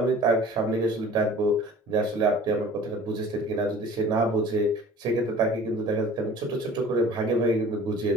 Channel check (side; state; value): both; normal; correlation 0.46